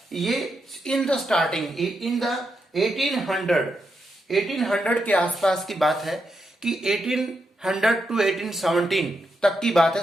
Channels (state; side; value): normal; both; correlation 0.83